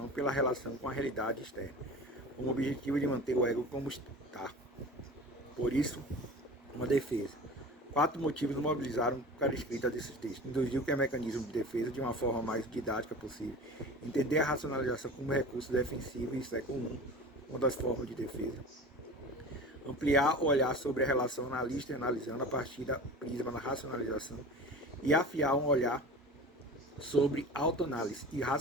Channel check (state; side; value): normal; both; correlation 0.36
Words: pela relação com a realidade externa, com o objetivo de manter o ego como está. Por isso, uma defesa. 4 motivos mobilizaram para a escrita desses textos. Introduziu que é mecanismo de defesa de uma forma mais didática possível. Entender a racionalização como recurso defensivo, isso é comum, uma das formas de defesa. Ampliar o olhar sobre a relação analista e analisando a partir da prisma da racionalização. E afiar um olhar sobre autoanálise e